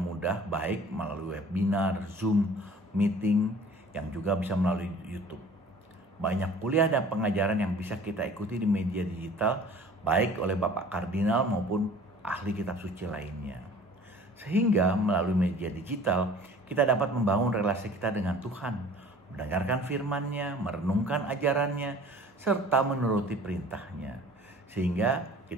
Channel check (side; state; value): both; normal; correlation 0.48